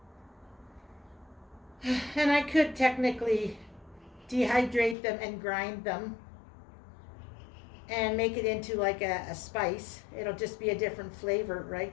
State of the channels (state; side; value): drops out; right; at 5.0 s